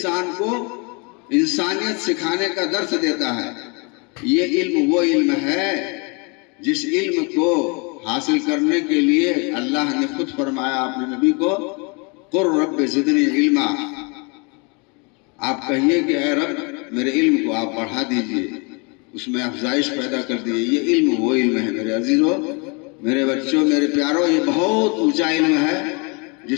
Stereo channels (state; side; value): quieter; right; 31.7 dB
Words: کو انسانیت سکھانے کا درس دیتا ہے۔ یہ علم وہ علم ہے جس علم کو حاصل کرنے کے لیے اللہ نے خود فرمایا اپنے نبی کو، قُل رب زدنی علما، آپ کہیے کہ اے رب میرے علم کو آپ بڑھا دیجئے، اس میں افزائش پیدا کر دیجئے۔ یہ علم وہ علم ہے میرے عزیزوں، میرے بچوں، میرے پیاروں، یہ بہت اونچا علم ہے